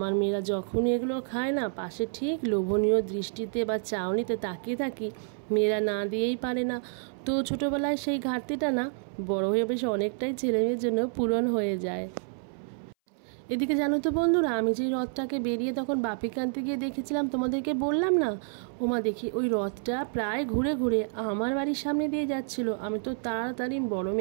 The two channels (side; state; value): left; silent; 59 dB below the other